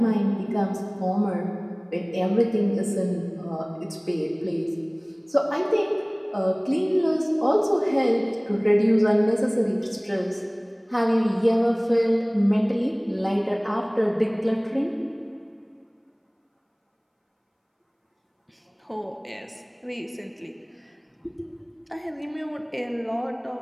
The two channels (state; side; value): identical; both; correlation 1.00